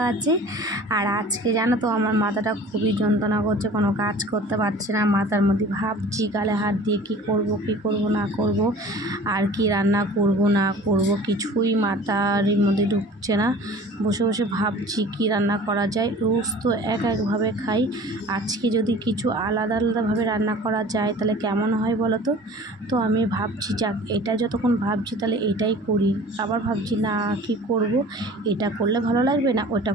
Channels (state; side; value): normal; both; correlation 0.44